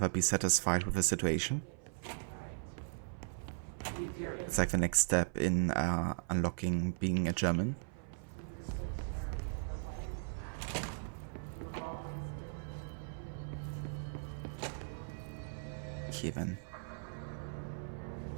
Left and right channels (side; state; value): left; silent; 52 dB below the other